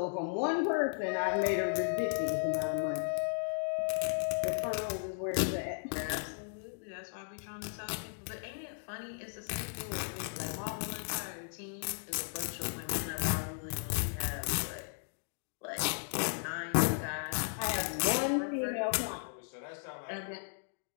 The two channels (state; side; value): silent; right; digital silence